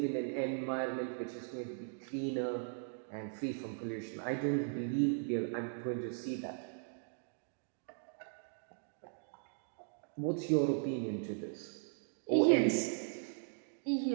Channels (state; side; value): silent; left; digital silence